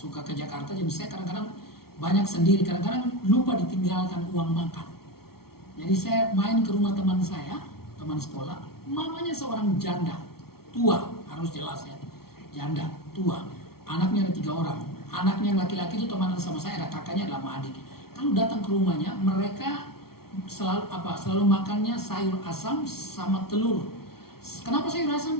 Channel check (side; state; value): right; late; 0.94 ms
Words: ke Jakarta. Jadi saya kadang-kadang banyak sendiri, kadang-kadang lupa ditinggalkan uang makan. Jadi saya main ke rumah teman saya, teman sekolah. Mamanya seorang janda, tua, harus jelas ya. Janda, tua. Anaknya ada 3 orang. Anaknya yang laki-laki itu teman sama saya, ada kakaknya, ada sama adik. Kalau datang ke rumahnya, mereka selalu makannya sayur asam sama telur. Kenapa sayur asam?